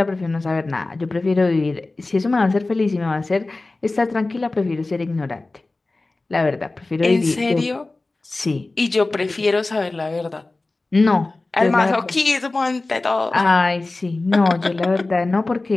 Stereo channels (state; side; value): quieter; right; 3.2 dB